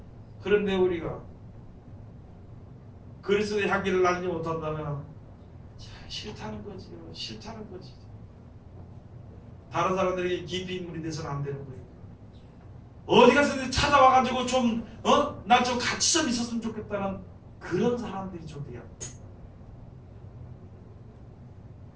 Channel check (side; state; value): both; identical; correlation 1.00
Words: 그런데 우리가 그리스도의 향기를 날리지 못한다면 싫다는 거지요. 싫다는 거지. 다른 사람들에게 깊이 인물이 돼서는 안 되는 거예요. 어디 가서 찾아와가지고 나 좀 같이 좀 있었으면 좋겠다는 그런 사람들이 좀 돼야.